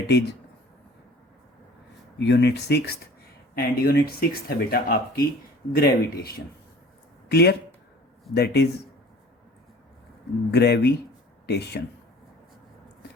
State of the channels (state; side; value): normal; both; correlation 0.47